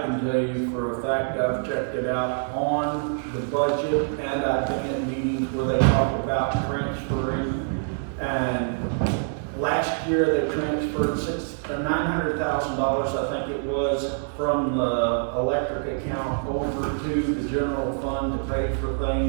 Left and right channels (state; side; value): silent; left; 61 dB below the other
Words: tell you for a fact, I've checked it out on the budget, and I've been at meetings where they talk about transferring. And last year, they transferred $900,000, I think it was, from the electric account over to the general fund to pay for